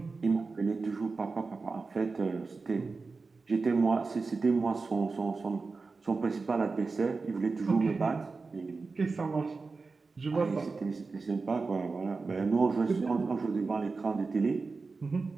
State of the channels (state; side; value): quieter; left; 4.2 dB